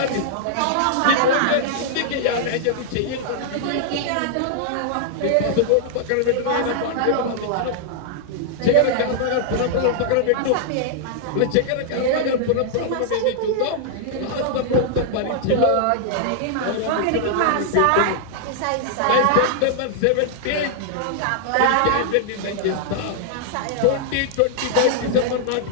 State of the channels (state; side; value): different; both; correlation -0.01